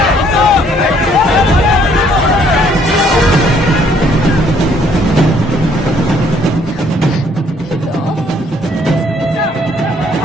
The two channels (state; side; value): normal; both; correlation 0.64